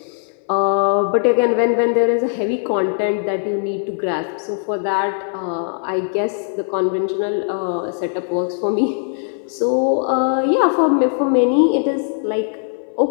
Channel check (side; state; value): right; silent; 60 dB below the other